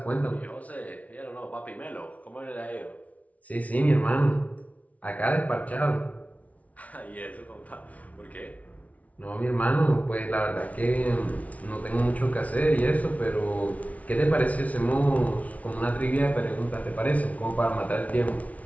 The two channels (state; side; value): late; right; 0.068 ms